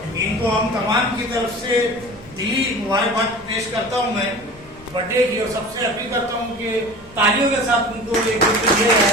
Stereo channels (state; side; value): noise; left; rumble, 25 dB below the sound